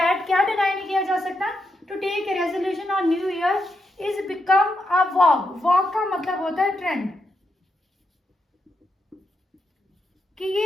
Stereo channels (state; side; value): normal; both; correlation 0.83